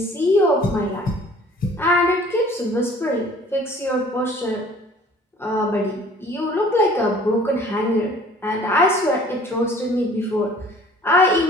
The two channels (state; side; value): normal; both; correlation 0.52